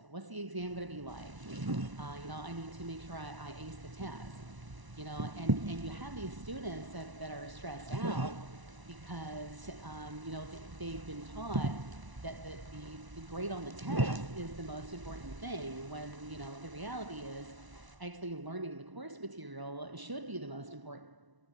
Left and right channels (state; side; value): late; left; 1.0 ms